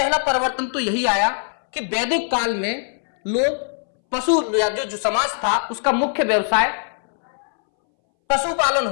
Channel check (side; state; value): right; silent; 63 dB below the other